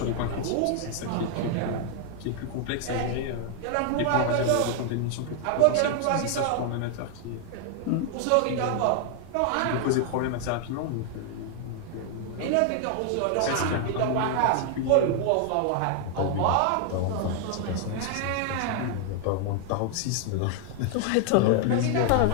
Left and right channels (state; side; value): different; both; correlation 0.00